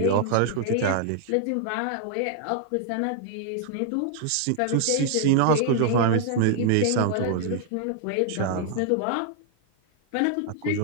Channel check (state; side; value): different; both; correlation 0.00